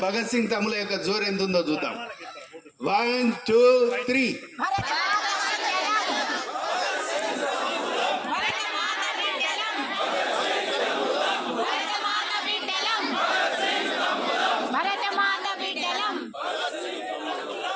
భగత్ సింగ్ తమ్ముల యొక్క జోరు ఎంత ఉందో చూద్దాం. 1 2 3.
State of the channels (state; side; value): identical; both; correlation 1.00